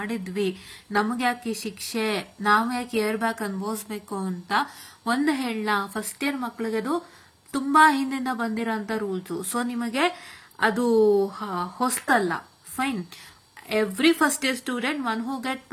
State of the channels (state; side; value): identical; both; correlation 1.00